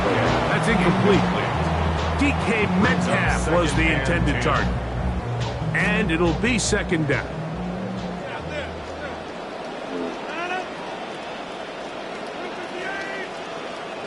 That's incomplete. DK Metcalf was the intended target. And it'll be second down.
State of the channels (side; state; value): both; identical; correlation 1.00